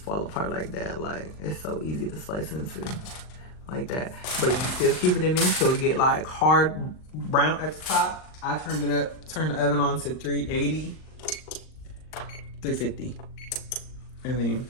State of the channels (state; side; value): late; right; 39 ms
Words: apart like that. Like, it's so easy to slice into like that. But you still keep it in there so it get like hard brown at the top. I turned it up, turned the oven on to 380, 350. And then